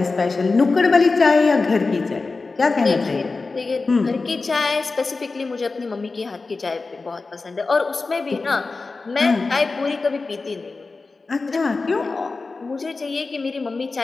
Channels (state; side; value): quieter; right; 3.9 dB